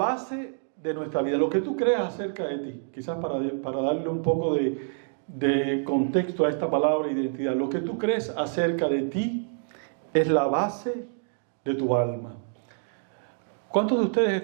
de nuestra vida, lo que tú creas acerca de ti. Quizás para darle un poco de contexto a esta palabra identidad. Lo que tú crees acerca de ti es la base de tu alma. ¿Cuántos de ustedes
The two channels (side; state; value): left; silent; digital silence